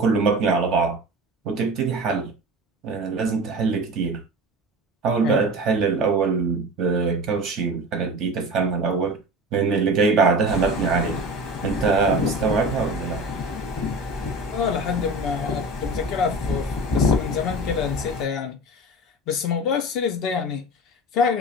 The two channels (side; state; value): both; normal; correlation 0.33